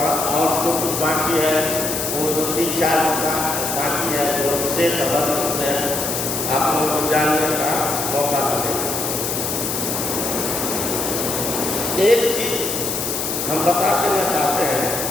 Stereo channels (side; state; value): left; noise; hiss, 2 dB below the sound